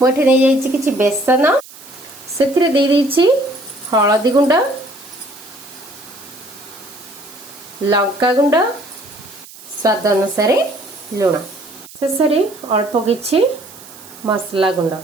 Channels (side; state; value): right; noise; hiss, 19 dB below the sound